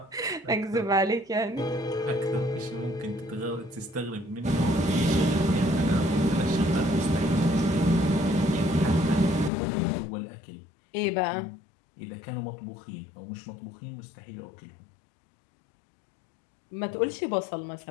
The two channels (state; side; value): drops out; right; at 9.5 s